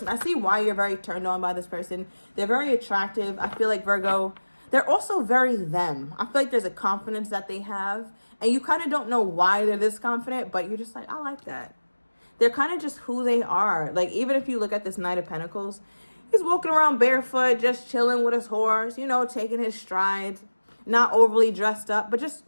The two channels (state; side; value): inverted; both; correlation -1.00